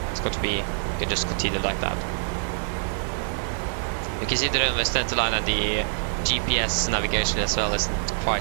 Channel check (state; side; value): silent; left; digital silence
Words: it's got to be, you can just continue like that. You can see the runway center line and the GPS navigation as well isn't